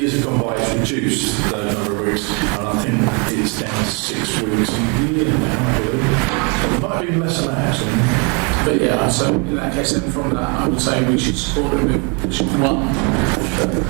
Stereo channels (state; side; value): quieter; left; 33.8 dB